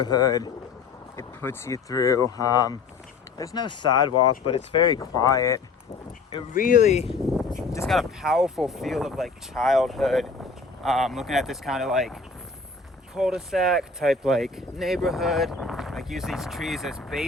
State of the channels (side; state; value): right; quieter; 4.4 dB